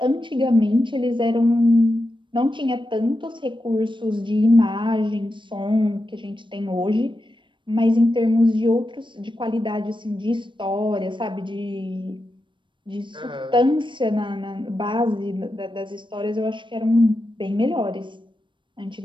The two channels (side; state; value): left; late; 0.23 ms